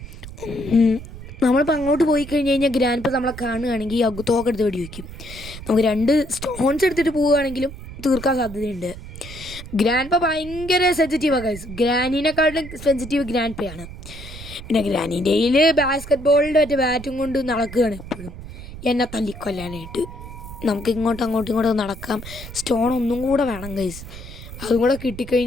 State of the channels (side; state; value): right; noise; rumble, 13 dB below the sound